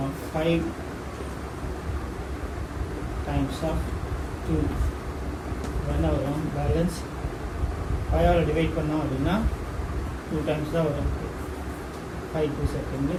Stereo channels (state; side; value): identical; both; correlation 1.00